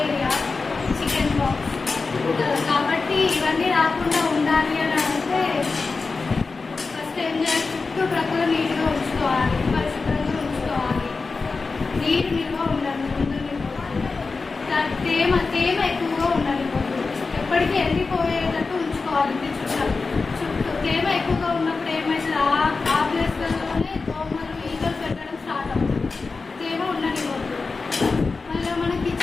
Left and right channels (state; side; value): quieter; right; 4.2 dB